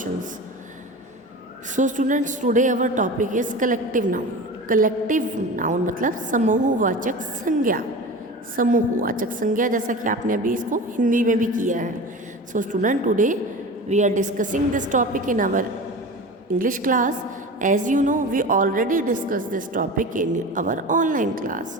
So students, today our topic is collective noun. Collective noun मतलब समूहवाचक संज्ञा. समूहवाचक संज्ञा जैसा कि आपने अभी इसको हिंदी में भी किया है. So student, today we are discussing this topic in our English class. As you know, we already discussed this topic in our online class.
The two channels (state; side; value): normal; both; correlation 0.32